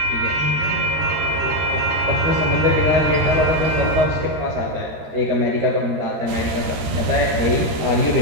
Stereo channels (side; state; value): left; late; 13 ms